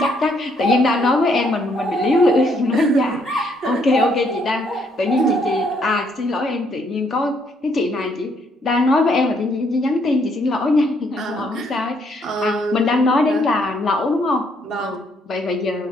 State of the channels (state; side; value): normal; both; correlation 0.70